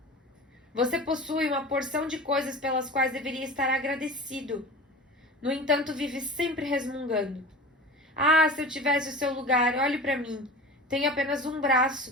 Você possui uma porção de coisas pelas quais deveria estar agradecido. No entanto, vive sempre resmungando. Ah, se eu tivesse o seu lugar, olhe para mim. Tenho apenas um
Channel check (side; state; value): both; normal; correlation 0.34